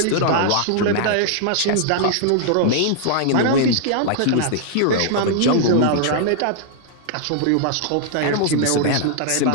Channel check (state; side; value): different; both; correlation -0.01